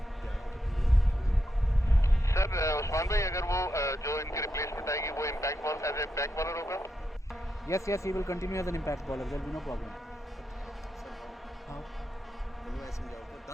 सर उस्मान भाई अगर वो जो इनकी रिप्लेसमेंट आएगी वो impact ball as a back bowler होगा? Yes, he will continue as an impact bowler. There will be no problem. हाँ. मैंने ऐसे समझाओ तो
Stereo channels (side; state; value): both; normal; correlation 0.84